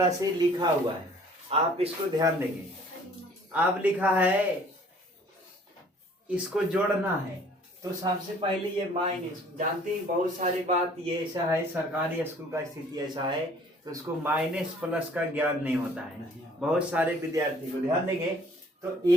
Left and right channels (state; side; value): normal; both; correlation 0.55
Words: से लिखा हुआ है, आप इसको ध्यान देंगे। अब लिखा है इसको जोड़ना है, तो सबसे पहले ये माइनस, जानते हैं बहुत सारी बात ये ऐसा है, सरकारी स्कूल का स्थिति ऐसा है तो उसको माइनस प्लस का ज्ञान नहीं होता है बहुत सारे विद्यार्थी को। ध्यान देंगे तो